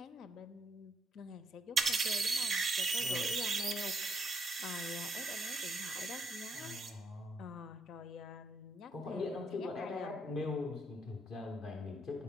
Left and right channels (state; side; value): normal; both; correlation 0.73